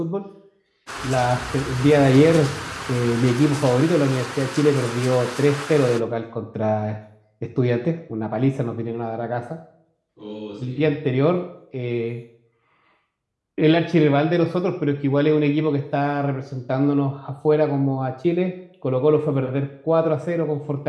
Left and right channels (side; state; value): both; identical; correlation 1.00